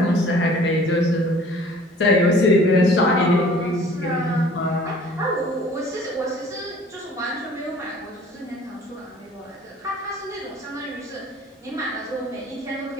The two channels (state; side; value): normal; both; correlation 0.51